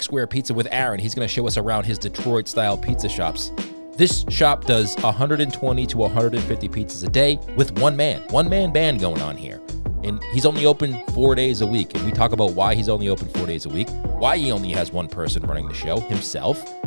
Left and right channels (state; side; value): inverted; both; correlation -1.00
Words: Square Pizza with Aaron. He's going to show us around his Detroit-style pizza shops. This shop does 120 to 150 pizzas a day with one-man band going on here. And he's only open 4 days a week. And we talk about why he's only open 4 days a week, why he only has one person running the show, himself,